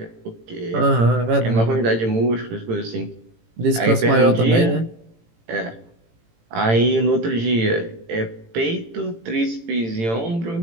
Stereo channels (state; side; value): late; left; 18 ms